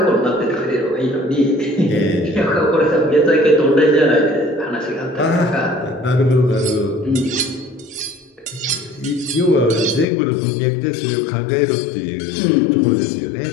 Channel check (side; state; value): right; drops out; at 10.1 s